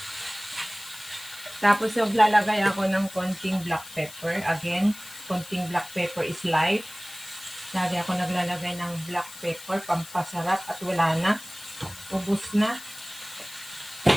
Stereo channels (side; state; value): left; noise; hiss, 16 dB below the sound